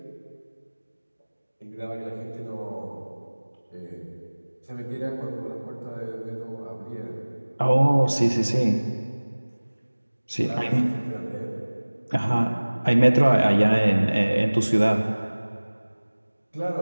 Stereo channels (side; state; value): both; inverted; correlation -1.00